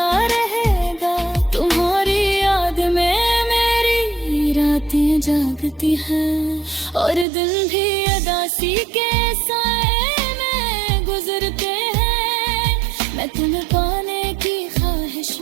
रहेगा। तुम्हारी याद में मेरी रातें जागती हैं और दिन भी उदासी के साए में गुजरते हैं। मैं तुम्हें पाने की ख्वाहिश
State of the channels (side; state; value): left; drops out; at 7.2 s